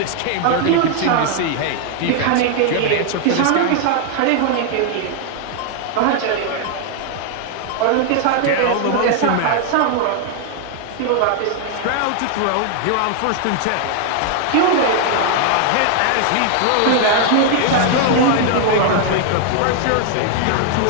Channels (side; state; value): both; different; correlation 0.00